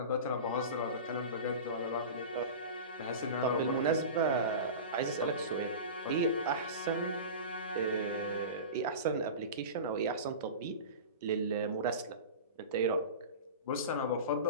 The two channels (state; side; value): inverted; both; correlation -0.30